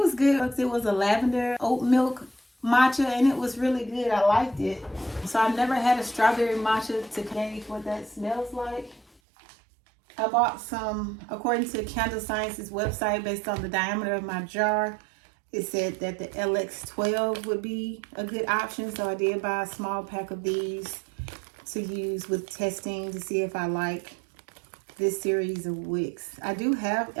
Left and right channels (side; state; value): left; drops out; at 9.1 s